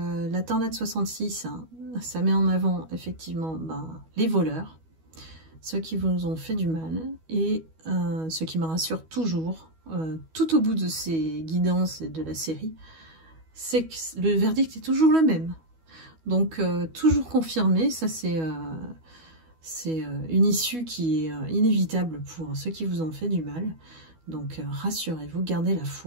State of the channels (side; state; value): left; late; 12 ms